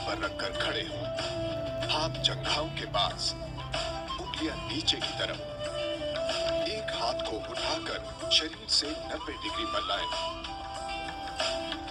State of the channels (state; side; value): identical; both; correlation 1.00